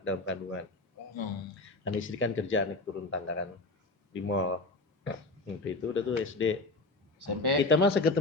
dalam kandungan. Dan istri kan kerja naik turun tangga kan di mall. Waktu itu udah tuh SD. SMP. Kita mah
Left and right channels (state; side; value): quieter; right; 3.1 dB